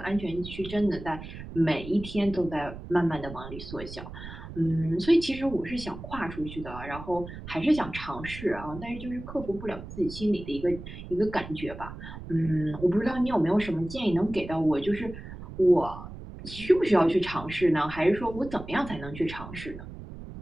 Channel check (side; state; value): right; noise; rumble, 12 dB below the sound